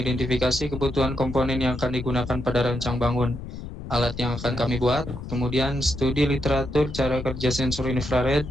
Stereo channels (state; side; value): noise; left; rumble, 10 dB below the sound